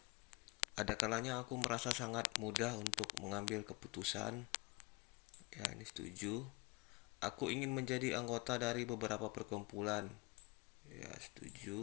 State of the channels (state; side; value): quieter; right; 24.6 dB